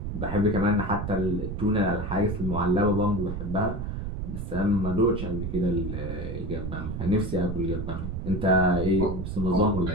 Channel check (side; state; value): right; noise; rumble, 5 dB below the sound